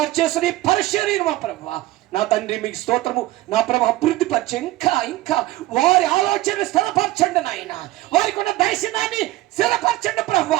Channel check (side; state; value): left; quieter; 17.4 dB